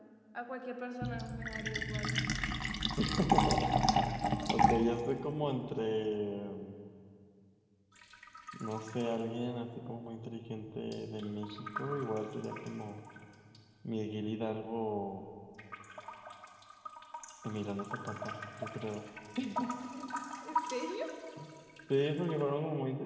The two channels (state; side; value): identical; both; correlation 1.00